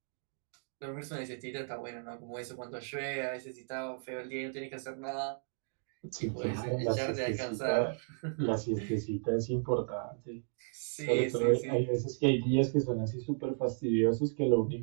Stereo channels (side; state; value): left; silent; digital silence